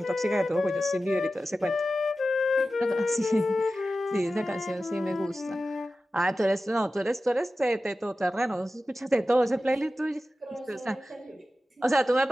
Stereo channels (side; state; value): both; normal; correlation 0.94